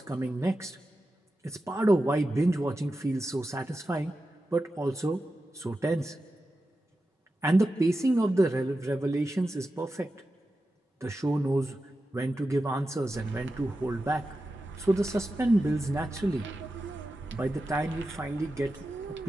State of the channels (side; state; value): both; normal; correlation 0.91